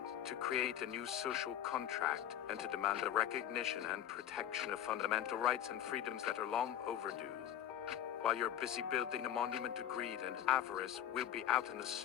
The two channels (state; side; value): quieter; right; 10.9 dB